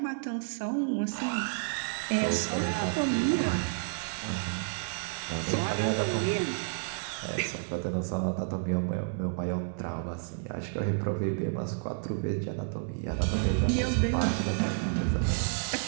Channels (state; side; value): silent; left; 57 dB below the other